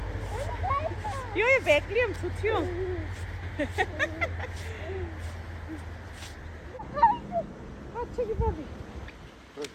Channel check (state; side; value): identical; both; correlation 1.00